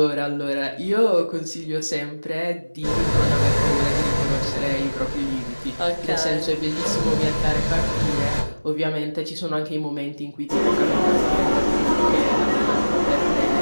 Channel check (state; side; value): inverted; both; correlation -1.00